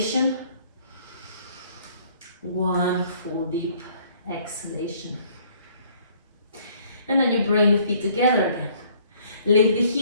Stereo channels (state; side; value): inverted; both; correlation -0.60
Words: One full deep exhalation. And then you bring the feet together again. Lift the